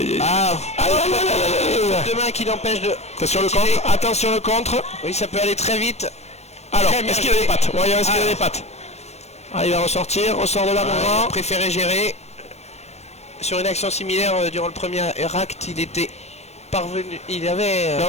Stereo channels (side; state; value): right; late; 0.31 ms